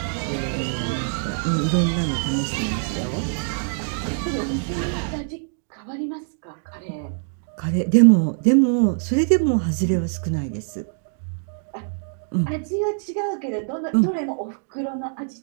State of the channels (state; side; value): silent; left; digital silence